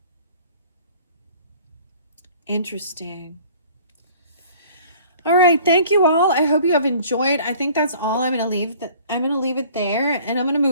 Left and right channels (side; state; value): both; inverted; correlation -0.51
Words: Interesting. All right, thank you all. I hope you have enjoyed. I think that's all. I'm gonna leave it there, and I'm gonna